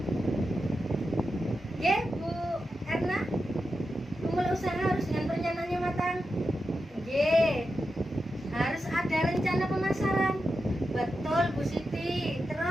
Ya, Bu Erna, memulai usaha harus dengan perencanaan yang matang. Ye, harus ada rencana pemasaran. Betul, Bu Siti.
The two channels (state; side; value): normal; both; correlation 0.89